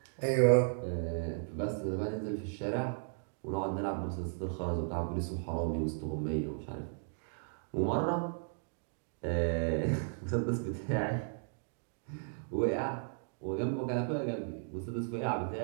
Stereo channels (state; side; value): silent; left; digital silence